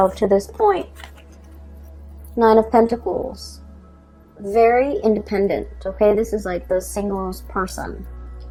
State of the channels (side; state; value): both; identical; correlation 1.00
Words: to this point. Nine of Pentacles. Very independent, okay? This is like the singles person.